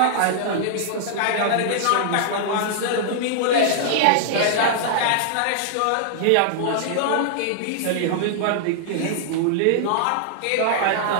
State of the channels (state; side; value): different; both; correlation -0.01